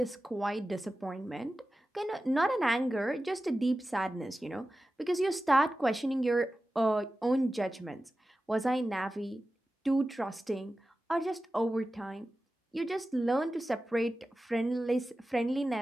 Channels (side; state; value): both; normal; correlation 0.94